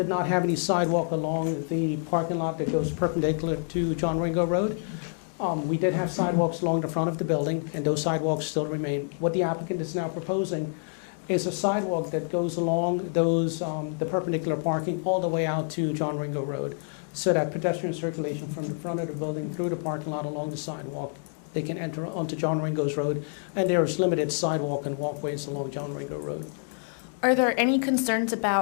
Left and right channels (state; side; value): silent; right; 60 dB below the other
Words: not have any sidewalk along the parking lot that goes perpendicular to John Ringo Road. We did have sidewalks along the front of the building, and those sidewalks still remain. What the applicant is now proposing is a sidewalk that goes along the perpendicular parking all the way out to John Ringo Road, so that pedestrian circulation from the front of the building through the parking lot along the sidewalk, they can enter onto John Ringo's Road, and there is limited sidewalk and walkways along John Ringo Road. Are there any concerns